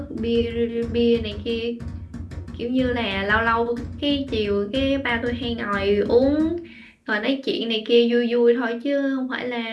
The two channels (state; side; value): identical; both; correlation 1.00